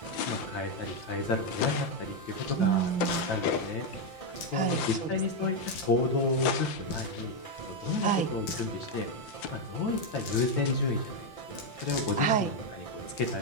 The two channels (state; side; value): late; right; 5.8 ms